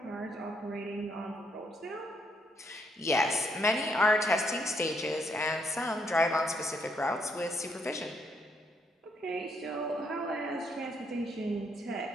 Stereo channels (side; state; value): both; normal; correlation 0.73